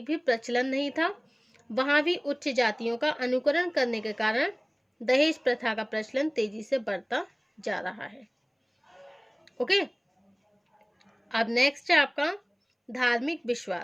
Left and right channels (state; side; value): identical; both; correlation 1.00